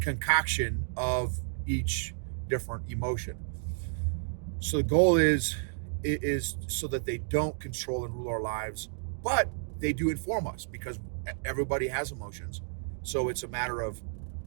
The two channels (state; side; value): silent; left; digital silence